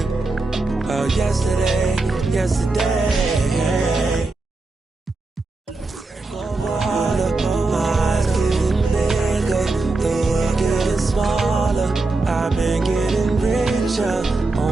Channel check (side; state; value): left; quieter; 3.4 dB